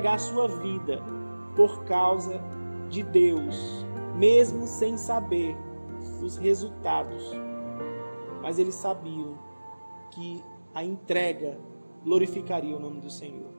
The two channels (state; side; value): inverted; both; correlation -1.00